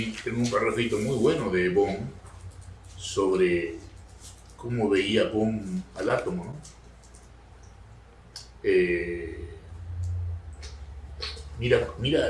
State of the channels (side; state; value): both; identical; correlation 1.00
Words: tengo un parrafito muy bueno de Bohm sobre cómo veía Bohm al átomo, ¿no?